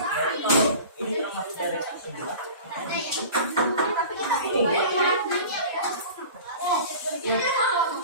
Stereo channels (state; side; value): inverted; both; correlation -0.38